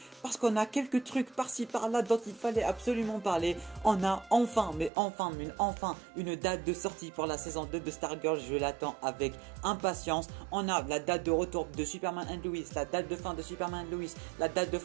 parce qu'on a quelques trucs par-ci par-là dont il fallait absolument parler. On a enfin une date de sortie pour la saison 2 de Stargirl, je l'attends avec impatience. On a la date de retour de Superman and Lois, la date de fin de Superman and Lois, la date de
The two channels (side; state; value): left; drops out; at 4.9 s